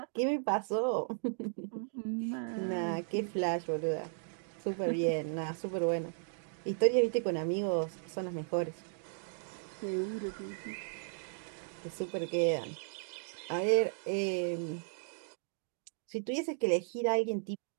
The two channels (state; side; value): silent; left; digital silence